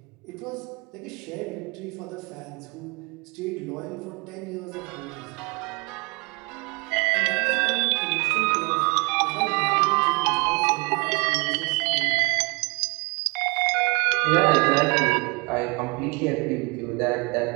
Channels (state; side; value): quieter; left; 29.0 dB